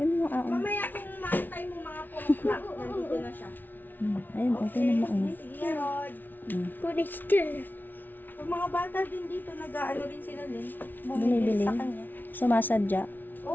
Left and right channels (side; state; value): right; late; 0.087 ms